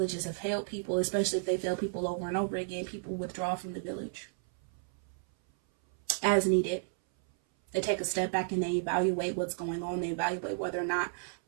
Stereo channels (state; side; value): silent; left; 56 dB below the other